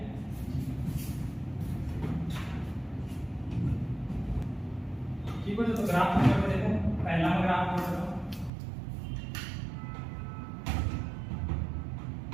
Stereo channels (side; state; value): left; drops out; at 8.5 s